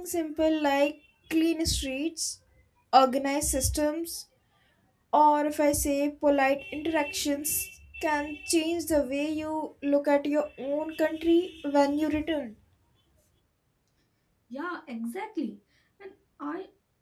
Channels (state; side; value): identical; both; correlation 1.00